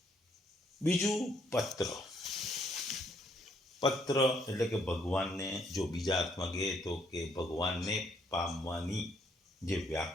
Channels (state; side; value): normal; both; correlation 0.69